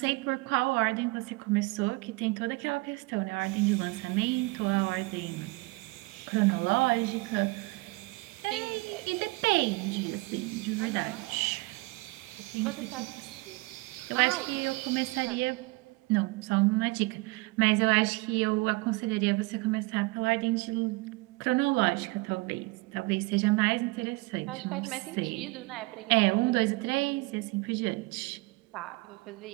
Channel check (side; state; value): left; quieter; 24.5 dB